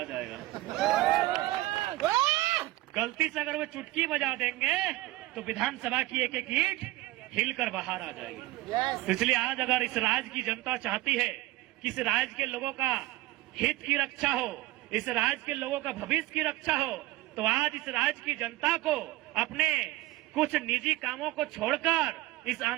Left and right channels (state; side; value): quieter; left; 18.4 dB